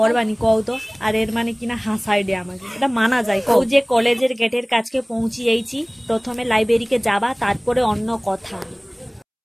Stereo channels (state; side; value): identical; both; correlation 1.00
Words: কও তো। আর এর মানে কিনা হাসাই দে আমাকে, এটা মানা যায় কও? যে কলেজের গেটের কাছকে পৌঁছিয়েছি, প্রথমে লাইব্রেরিকে যাবা, তারপরে অন্য কথা।